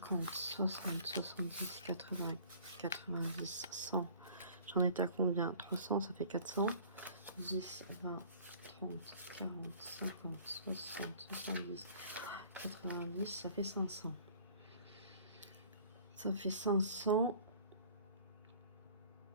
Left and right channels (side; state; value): both; inverted; correlation -0.50